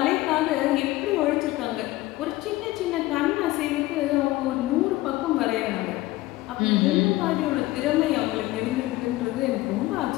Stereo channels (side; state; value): right; quieter; 18.0 dB